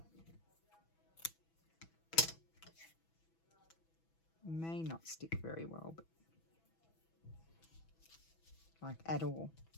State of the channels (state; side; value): late; right; 6.1 ms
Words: May not stick very well, but like at all.